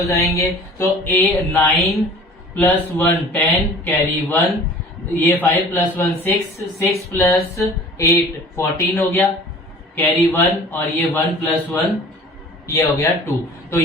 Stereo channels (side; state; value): both; normal; correlation 0.46